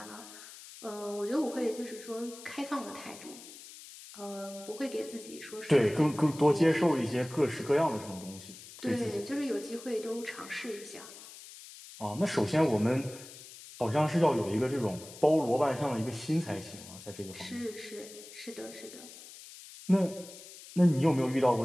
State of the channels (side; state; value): left; noise; hiss, 16 dB below the sound